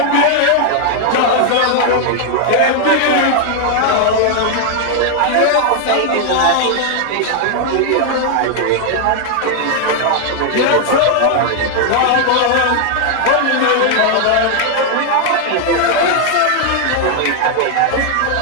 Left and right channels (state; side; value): different; both; correlation 0.00